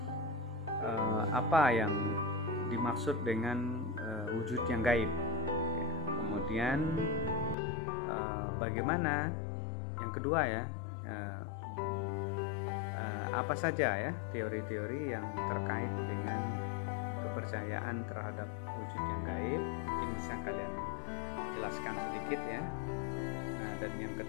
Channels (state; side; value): drops out; right; at 7.6 s